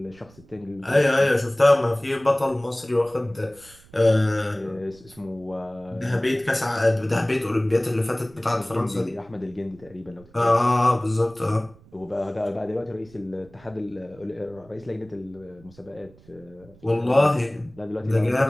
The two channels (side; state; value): right; noise; rumble, 25 dB below the sound